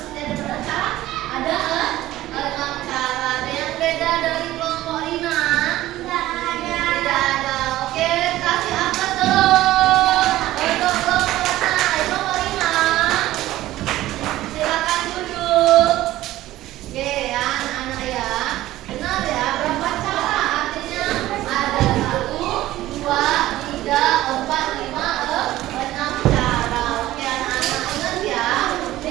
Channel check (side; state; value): left; quieter; 15.4 dB